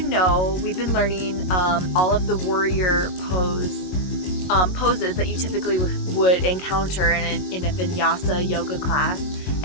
know, we've been learning all of the warrior poses that you typically would encounter in a vinyasa yoga class.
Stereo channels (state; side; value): late; right; 22 ms